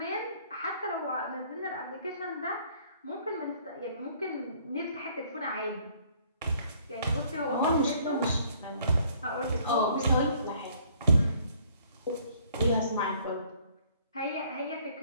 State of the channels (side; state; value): both; inverted; correlation -0.61